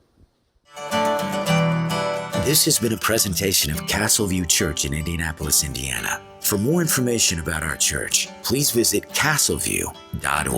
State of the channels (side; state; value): both; identical; correlation 1.00